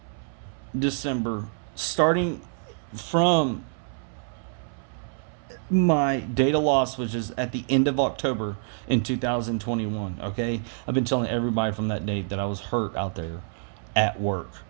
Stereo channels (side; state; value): left; silent; 60 dB below the other